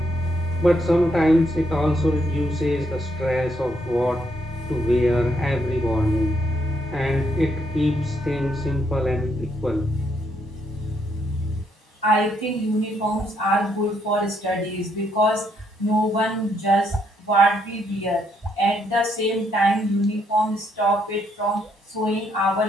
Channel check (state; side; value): normal; both; correlation 0.74